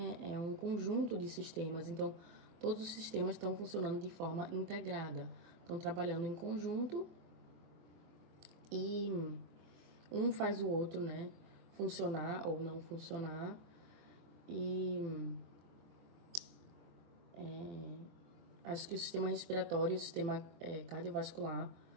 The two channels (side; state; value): left; late; 23 ms